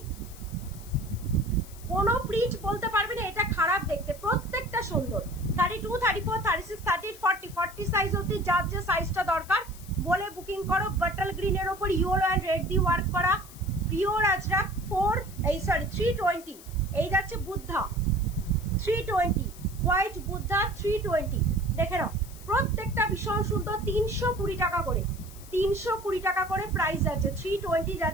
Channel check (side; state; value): left; noise; hiss, 19 dB below the sound